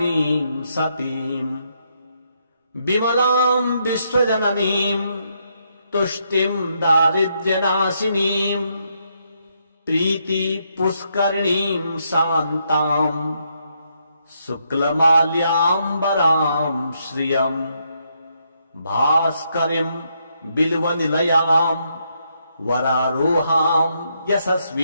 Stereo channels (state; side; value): inverted; both; correlation -0.77